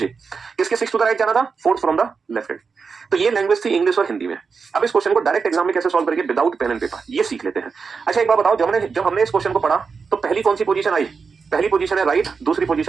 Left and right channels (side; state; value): left; quieter; 5.3 dB